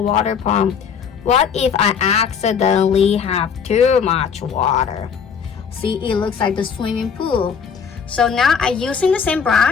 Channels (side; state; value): right; quieter; 6.8 dB